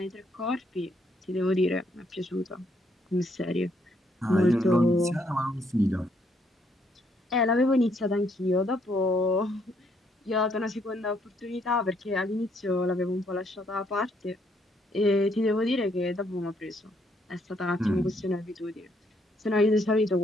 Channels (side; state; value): both; normal; correlation 0.71